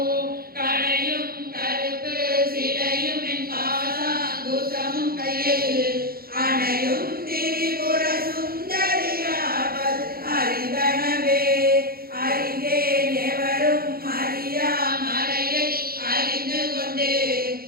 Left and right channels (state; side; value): late; left; 0.44 ms